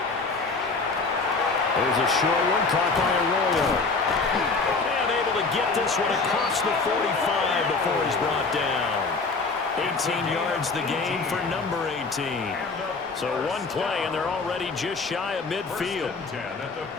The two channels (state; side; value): quieter; right; 4.1 dB